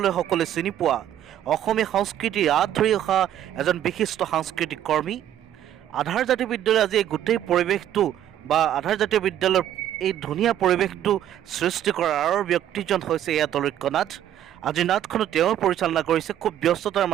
সকলোৱে চিনি পোৱা অসমীয়া সংস্কৃতিৰ আঁত ধৰি অহা এজন বিশিষ্ট সাংস্কৃতিক কৰ্মী। আধাৰ জাতীয় বিদ্যালয় আজি এই গোটেই পৰিৱেশটো বা আধাৰ জাতীয় বিদ্যালয়ৰ এই ধুনীয়া পৰিৱেশটো সৃষ্টি কৰাৰ আৰু ব্যক্তিজন হৈছে এয়া তলৈক্য নাথ। আজি নাটখনো তেওঁ পৰিচালনা কৰিছে, খুব ব্যস্ততাৰ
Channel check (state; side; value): quieter; left; 11.3 dB